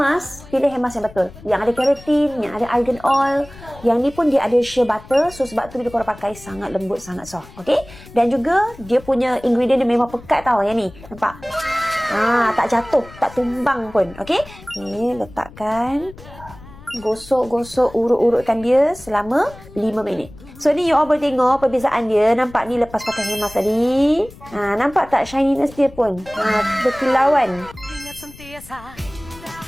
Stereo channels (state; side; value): noise; left; rumble, 19 dB below the sound